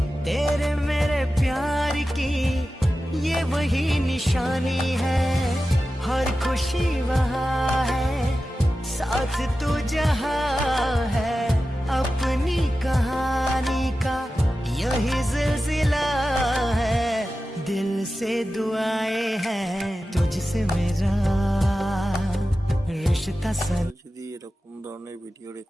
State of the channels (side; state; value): both; normal; correlation 0.94